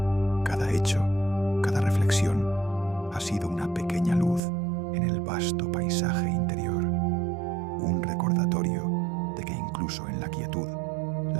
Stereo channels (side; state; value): left; drops out; at 4.4 s